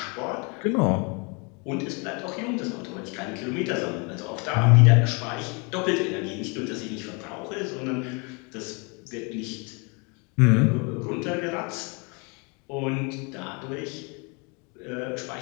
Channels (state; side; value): quieter; right; 32.0 dB